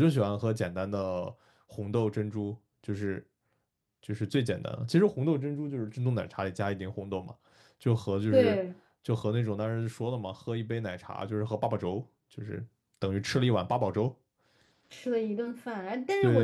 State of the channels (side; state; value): both; identical; correlation 1.00